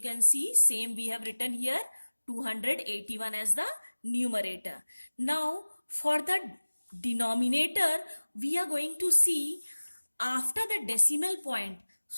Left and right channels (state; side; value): inverted; both; correlation -1.00